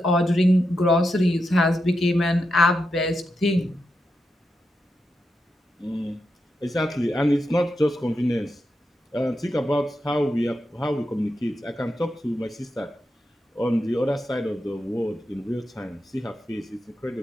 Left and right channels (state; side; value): normal; both; correlation 0.87